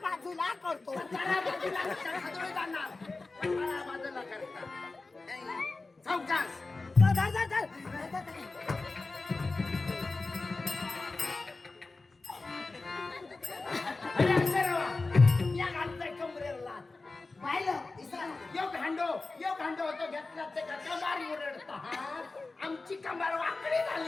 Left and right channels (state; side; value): quieter; right; 3.6 dB